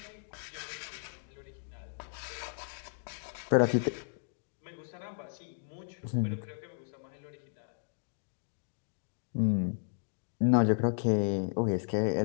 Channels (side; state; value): right; silent; digital silence